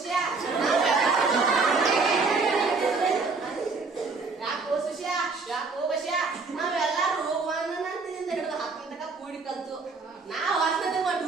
ಯಾಕೋ ಸುಷ್ಯ ಯಾಕೋ ಬಸ್ಯ ನಾವೆಲ್ಲಾರು ಹೋಗುವಂತಿಂದ ಹಿಡಿದು ಹತ್ತನ ತನಕ ಕೂಡಿ ಕಲ್ತು ನಾವ್ ಹೊರತದ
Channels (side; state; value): left; quieter; 4.2 dB